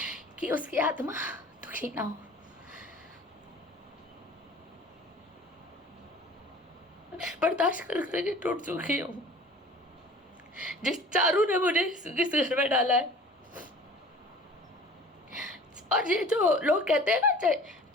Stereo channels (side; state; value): both; normal; correlation 0.45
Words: कि उसकी आत्मा दुखी ना हो। बर्दाश्त कर करके टूट चुकी हूँ। जिस चारू ने मुझे इस घर में डाला है, और ये जो लोग कहते हैं ना,